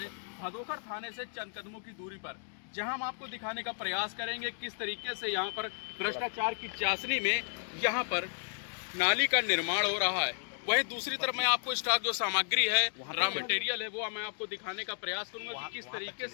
भदोकर थाने से चंद कदमों की दूरी पर, जहां हम आपको दिखाने का प्रयास करेंगे किस तरीके से यहां पर भ्रष्टाचार की चाशनी में यहां पर नाली का निर्माण हो रहा है। वहीं दूसरी तरफ मैं आपको स्टॉक जो सामग्री है, रॉ मटेरियल है, वो मैं आपको दिखाने का प्रयास करूंगा कि किस तरीके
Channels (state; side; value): silent; right; digital silence